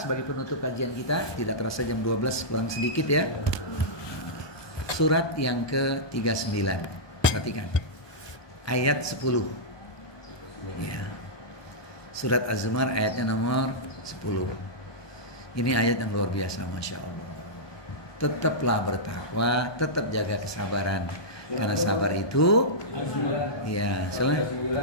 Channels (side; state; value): right; late; 1.2 ms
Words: penutup kajian kita. Tidak terasa jam 12 kurang sedikit ya. Surat yang ke-39. Perhatikan. Ayat 10. Ya. Surat Az-Zumar ayatnya nomor 10. Ini ayat yang luar biasa, Masya Allah. Tetaplah bertakwa, tetap jaga kesabaran. Karena sabar itu, ya,